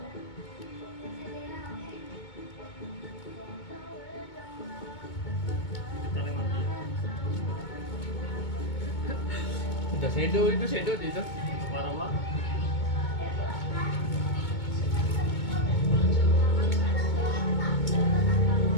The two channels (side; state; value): right; late; 2.2 ms